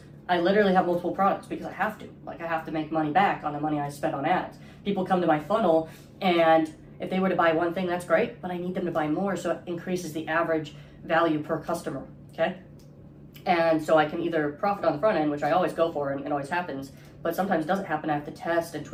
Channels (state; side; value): identical; both; correlation 1.00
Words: I literally have multiple products because I have to. I have to make money back on the money I spent on ads. People come to my funnel, and if they were to buy one thing, that's great, but I need them to buy more, so it increases the average value per customer, okay? And so I can either profit on the front end, which I always go for and it always happens, but sometimes it doesn't happen. I have to test and